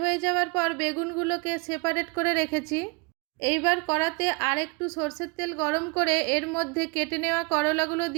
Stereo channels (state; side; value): quieter; left; 29.1 dB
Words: হয়ে যাওয়ার পর বেগুনগুলোকে সেপারেট করে রেখেছি। এইবার কড়াতে আর একটু সরষের তেল গরম করে এর মধ্যে কেটে নেওয়া করলাগুলো